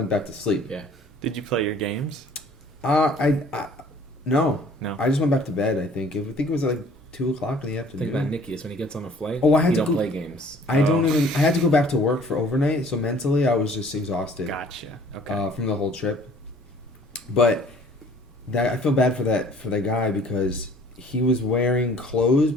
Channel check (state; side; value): normal; both; correlation 0.54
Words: back to sleep. Yeah. Did you play your games? No. No. I just went back to bed, I think. I think it was like 2:00 in the afternoon. Think about Nicky is when he gets on a flight. Oh, I had he to don't go- play games. I had to go back to work for overnight, so mentally I was just exhausted Gotcha. Okay. from the whole trip. But I feel bad for that guy because he was wearing clothes